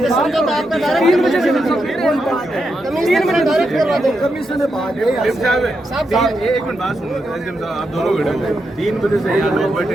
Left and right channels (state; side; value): normal; both; correlation 0.84